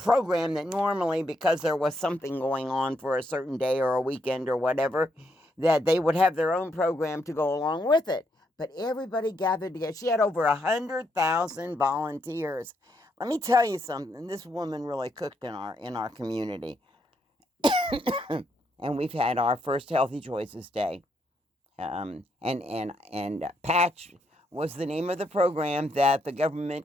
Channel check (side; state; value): both; normal; correlation 0.77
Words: that normally, because there was something going on for a certain day or a weekend or whatever, that they would have their own program to go along with it. but everybody gathered together. She had over 100,000 volunteers. Let me tell you something. This woman really cooked in our community. And we've had our first Healthy Choices Day. And Patch was the name of the program that the